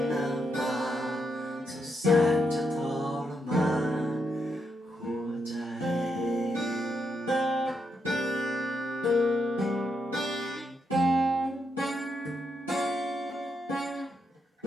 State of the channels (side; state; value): both; normal; correlation 0.81